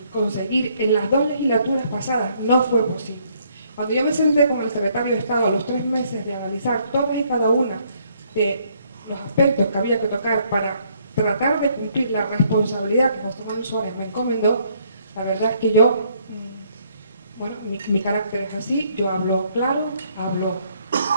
conseguir en las 2 legislaturas pasadas, no fue posible. Cuando yo me senté con el secretario de Estado a los 3 meses de analizar todas y cada una de los aspectos que había que tocar para tratar de cumplir la responsabilidad que José Manuel Suárez me encomendó, la verdad es que yo, bueno, mi carácter es así, yo hablo claro, hablo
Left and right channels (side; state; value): both; inverted; correlation -0.68